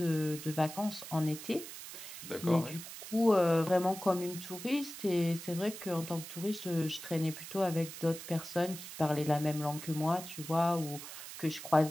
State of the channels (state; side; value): noise; right; hiss, 11 dB below the sound